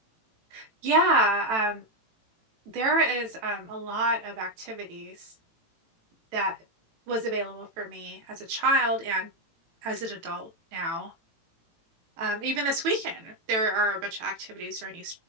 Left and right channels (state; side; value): late; left; 18 ms